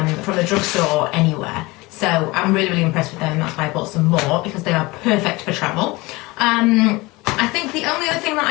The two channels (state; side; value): quieter; right; 22.6 dB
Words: the drugstore or anywhere. So I'm really impressed with them, and that's why I bought some more, because they are perfect for travel. I think the only other thing that